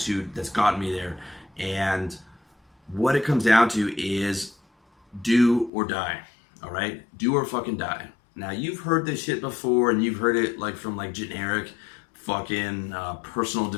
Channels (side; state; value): right; drops out; at 5.7 s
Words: that's gotten me there. And what it comes down to is do or die. All right? Do or fucking die. Now, you've heard this shit before, and you've heard it like from like generic fucking personal